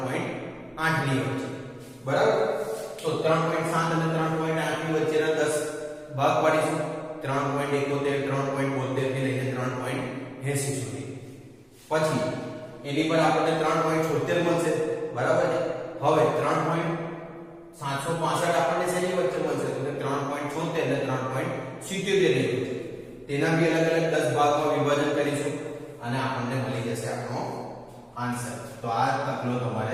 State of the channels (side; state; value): both; identical; correlation 1.00